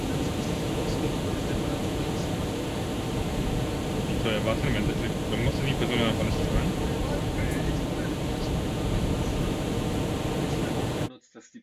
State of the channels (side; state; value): both; identical; correlation 1.00